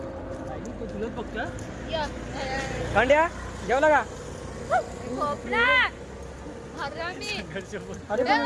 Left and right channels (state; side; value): identical; both; correlation 1.00